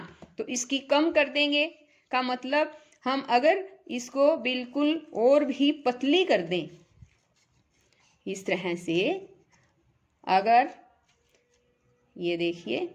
तो इसकी कम कर देंगे का मतलब हम अगर इसको बिल्कुल और भी पतली कर दें, इस तरह से, अगर ये देखिए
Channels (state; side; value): identical; both; correlation 1.00